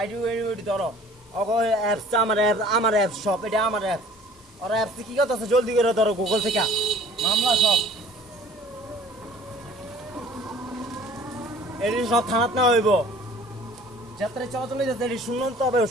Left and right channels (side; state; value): left; noise; hiss, 28 dB below the sound